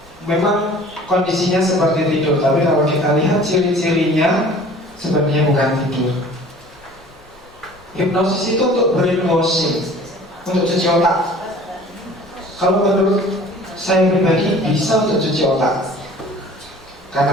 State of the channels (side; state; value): both; normal; correlation 0.47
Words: Memang kondisinya seperti tidur, tapi kalau kita lihat ciri-cirinya sebenarnya bukan tidur. Hipnosis itu untuk brainwashing, untuk cuci otak. Kalau menurut saya pribadi bisa untuk cuci otak.